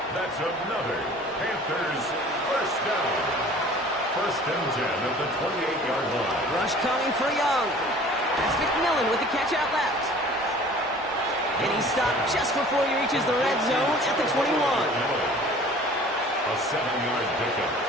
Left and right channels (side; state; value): both; normal; correlation 0.47